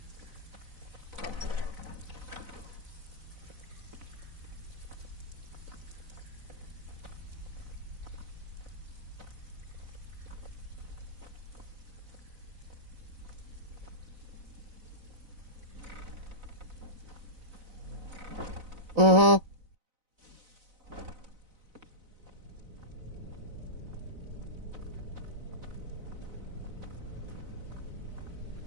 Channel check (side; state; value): left; late; 4.0 ms